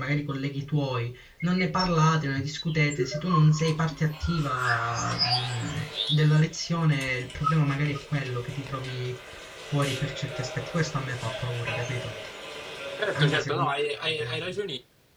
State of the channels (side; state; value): both; identical; correlation 1.00